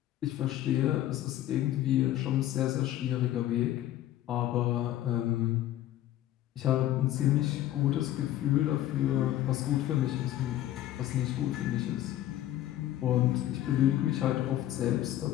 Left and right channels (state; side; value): quieter; right; 13.4 dB